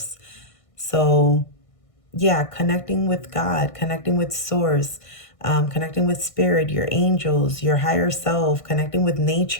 So yeah, connecting with God, connecting with source, connecting with spirit, your angels, your higher self, connecting with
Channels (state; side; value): late; right; 1.6 ms